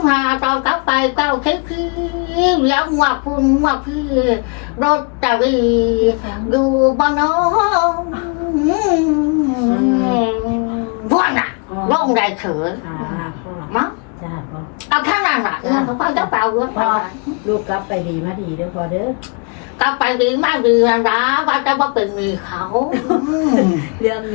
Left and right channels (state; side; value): quieter; right; 35.8 dB